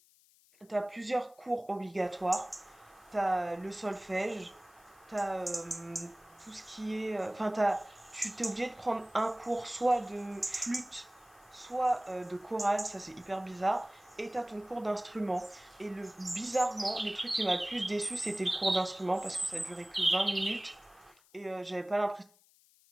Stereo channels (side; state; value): left; noise; hiss, 29 dB below the sound